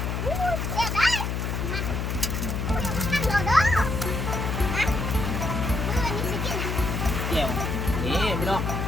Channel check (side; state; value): left; noise; hum, 1 dB below the sound